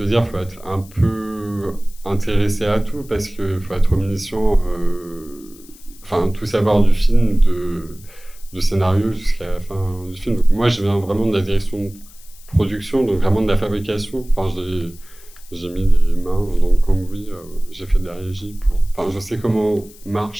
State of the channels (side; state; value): left; noise; hiss, 23 dB below the sound